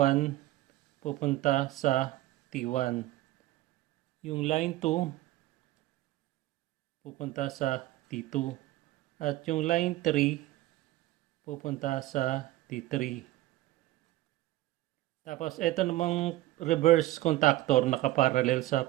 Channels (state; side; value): quieter; left; 16.5 dB